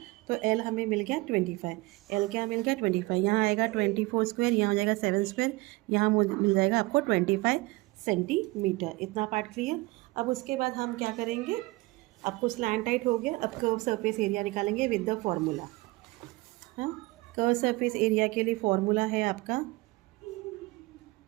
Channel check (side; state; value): left; quieter; 21.9 dB